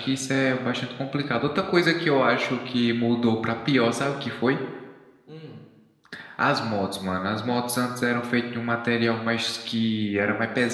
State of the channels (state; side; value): identical; both; correlation 1.00